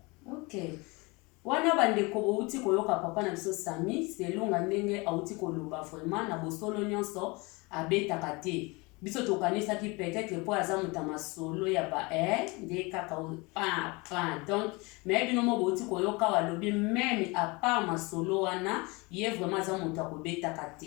Ok, wana bandeko bouti koyoka papa na biso Sami selonga ndenge auti koloba vraiment na bosolo nyonso abetaka te. Biso tokanisaki peut-être po aza muta masolo ya ba nde kaka donc mais bino mo bouti koyoka walobi même à part masolo wana ye vraiment aza muta kobetaka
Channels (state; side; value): quieter; right; 26.2 dB